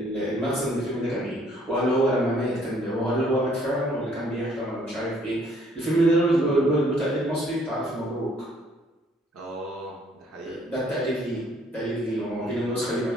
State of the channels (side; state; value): both; normal; correlation 0.63